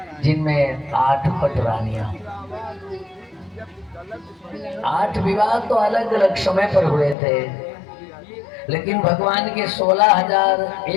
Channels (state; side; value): drops out; right; at 7.2 s